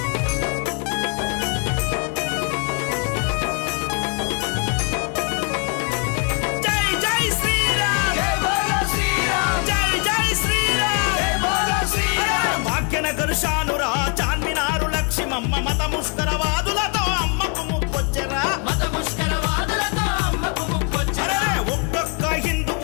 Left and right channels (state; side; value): quieter; right; 34.3 dB